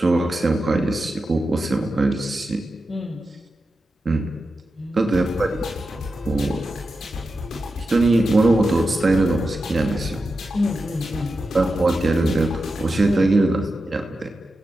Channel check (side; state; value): both; normal; correlation 0.90